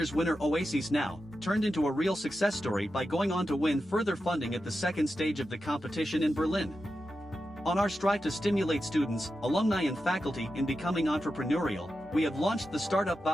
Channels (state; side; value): normal; both; correlation 0.90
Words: winner Oasis Now turned into a real success story by going on to win further funding at the 2nd stage of the competition in Berlin. On our strive to stimulate students, alumni and faculty in becoming entrepreneurial, we have launched the Startup